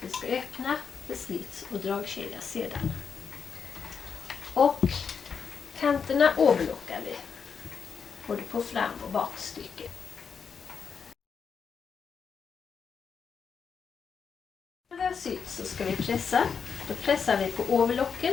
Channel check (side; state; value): right; quieter; 6.2 dB